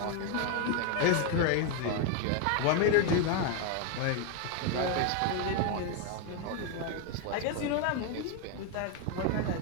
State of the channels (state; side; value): different; both; correlation 0.01